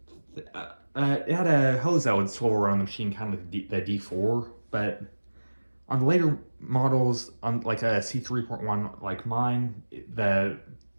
It had a hose that would swivel around the machine, kind of like the D4, but on the later models, on like a C3.1 like mine, the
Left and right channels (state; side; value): inverted; both; correlation -1.00